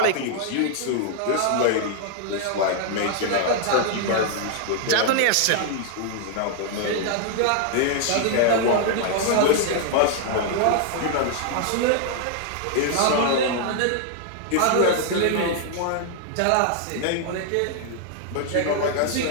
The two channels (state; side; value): different; both; correlation 0.00